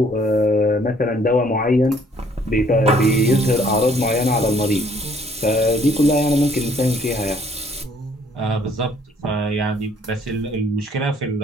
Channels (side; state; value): both; normal; correlation 0.61